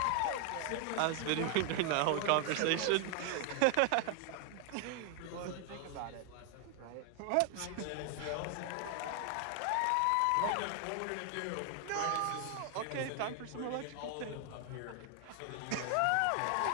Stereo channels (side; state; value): both; different; correlation 0.00